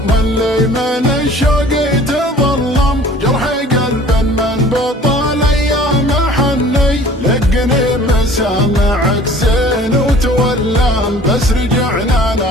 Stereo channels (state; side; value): normal; both; correlation 0.49